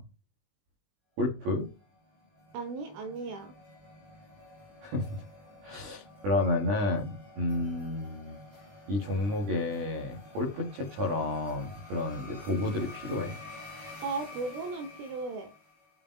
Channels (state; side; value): late; left; 20 ms